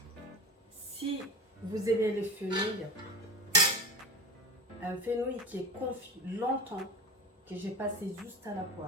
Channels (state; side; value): normal; both; correlation 0.29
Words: si vous aimez les fenouils, un fenouil qui est confit longtemps, que j'ai passé juste à la